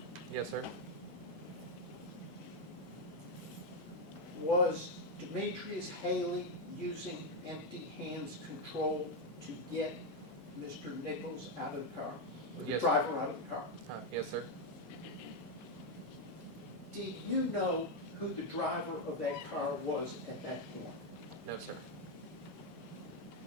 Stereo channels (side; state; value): both; normal; correlation 0.04